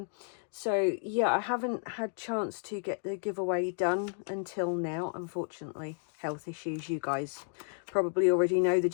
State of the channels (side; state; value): right; silent; digital silence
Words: So yeah, I haven't had chance to get the giveaway done until now, unfortunately. Health issues, you guys probably already know the